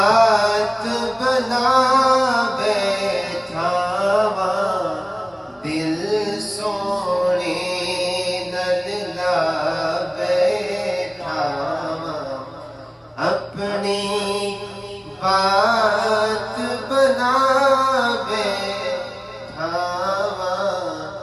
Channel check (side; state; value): both; identical; correlation 1.00